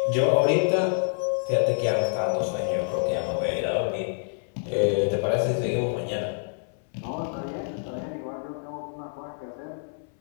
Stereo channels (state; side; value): silent; right; 60 dB below the other